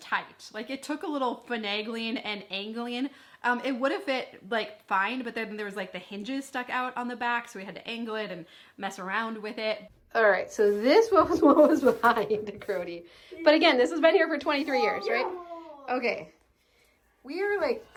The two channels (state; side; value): identical; both; correlation 1.00